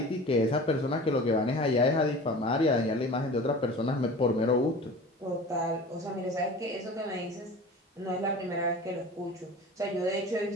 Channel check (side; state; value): both; normal; correlation 0.38